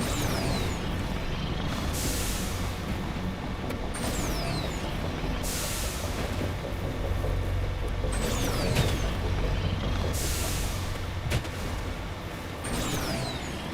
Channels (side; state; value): both; identical; correlation 1.00